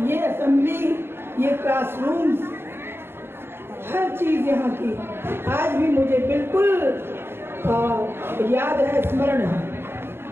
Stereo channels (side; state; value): left; late; 0.11 ms